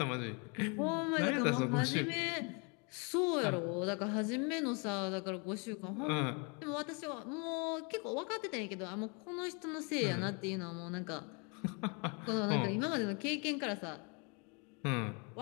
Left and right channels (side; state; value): right; quieter; 33.9 dB